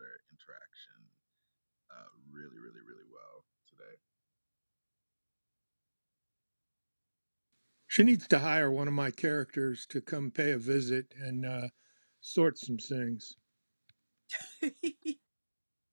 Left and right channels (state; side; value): inverted; both; correlation -1.00